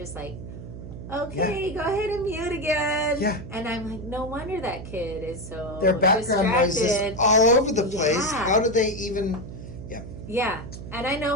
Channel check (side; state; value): right; noise; hum, 11 dB below the sound